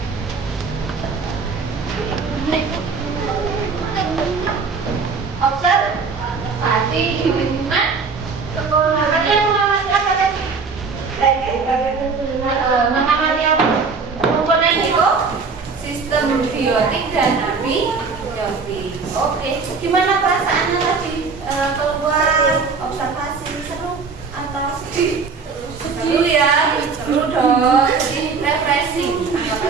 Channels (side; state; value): left; quieter; 4.9 dB